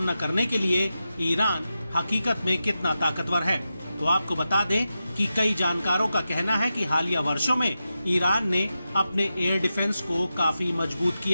करने के लिए ईरान हकीकत में कितना ताकतवर है। तो आपको बता दें कि कई जानकारों का कहना है कि हालिया वर्षों में ईरान ने अपने एयर डिफेंस को काफी मजबूत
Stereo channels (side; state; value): both; inverted; correlation -0.91